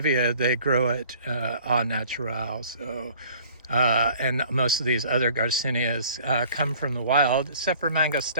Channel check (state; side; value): inverted; both; correlation -0.51